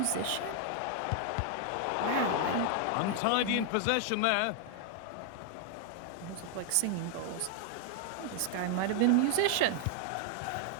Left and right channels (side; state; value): both; different; correlation 0.00